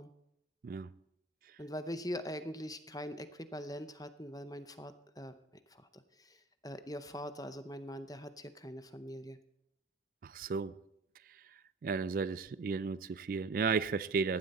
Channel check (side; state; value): left; quieter; 3.6 dB